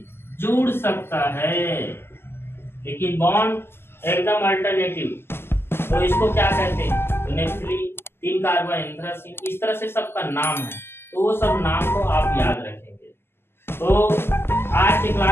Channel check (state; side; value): late; right; 0.12 ms